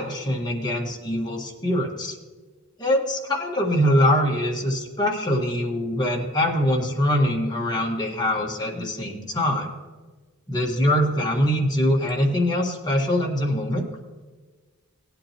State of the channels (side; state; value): both; normal; correlation 0.56